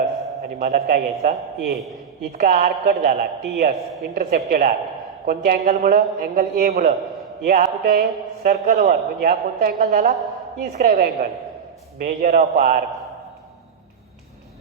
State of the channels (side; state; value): left; quieter; 7.1 dB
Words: आणि मला काय घ्यायचा? ए. इतका आर्क कट झाला TS इंटरसेप्टेड आर्क. कोणत्या अँगलमुळं? अँगल ए मुळं. ए हा कुठे आहे? सर्कलवर. म्हणजे हा कोणता अँगल झाला? Inscribe angle. Measure of arc